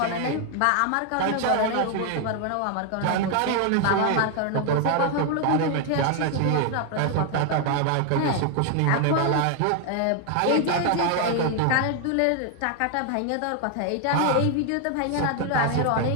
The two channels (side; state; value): both; different; correlation 0.00